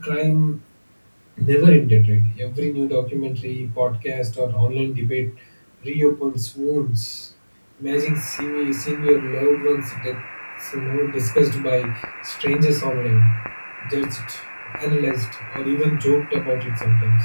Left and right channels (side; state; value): both; inverted; correlation -1.00